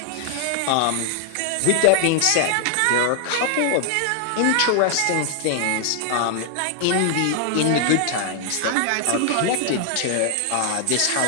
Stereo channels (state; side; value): different; both; correlation 0.00